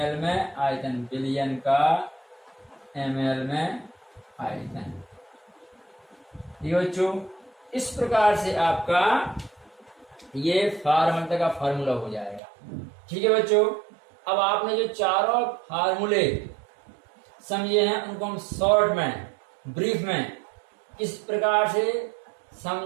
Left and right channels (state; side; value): drops out; left; at 12.4 s